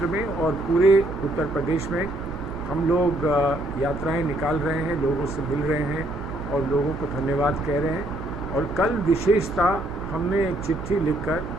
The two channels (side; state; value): right; noise; hum, 10 dB below the sound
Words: में और पूरे उत्तर प्रदेश में हम लोग यात्राएं निकाल रहे हैं, लोगों से मिल रहे हैं और लोगों को धन्यवाद कह रहे हैं। और कल विशेषता हमने एक चिट्ठी लिखकर